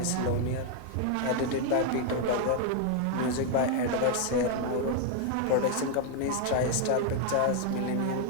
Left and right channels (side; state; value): both; different; correlation 0.00